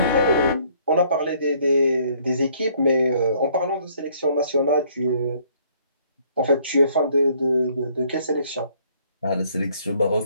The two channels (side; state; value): both; inverted; correlation -0.63